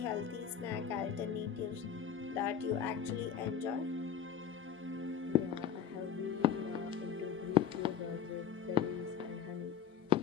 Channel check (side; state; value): right; quieter; 8.3 dB